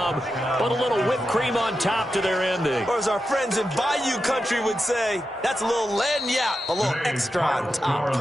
but a little whipped cream on top to their ending. Or as our friends in Bayou Country would say, that's a little lagniappe, a little extra on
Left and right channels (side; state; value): both; normal; correlation 0.89